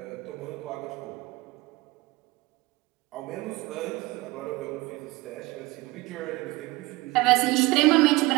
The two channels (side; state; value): left; quieter; 21.5 dB